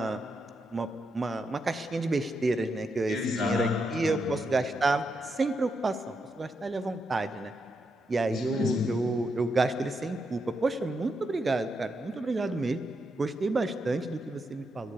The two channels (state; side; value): normal; both; correlation 0.83